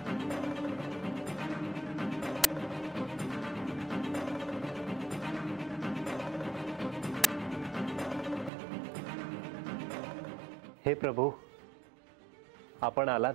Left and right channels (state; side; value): drops out; left; at 8.5 s